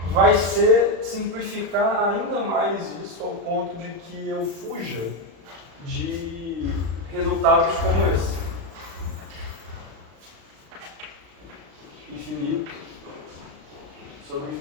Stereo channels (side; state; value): left; late; 35 ms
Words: vai ser simplificar ainda mais isso ao ponto de que eu fuja de resultados como esse. Infinito sobre